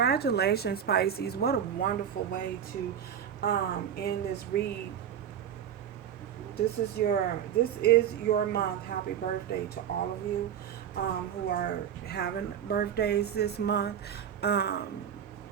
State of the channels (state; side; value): quieter; left; 9.1 dB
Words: Pisces. What a wonderful way to end this read. This is your month. Happy birthday to all of you who are having birthdays this month.